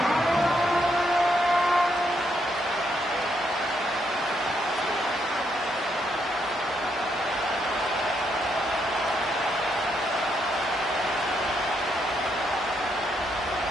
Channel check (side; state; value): both; normal; correlation 0.77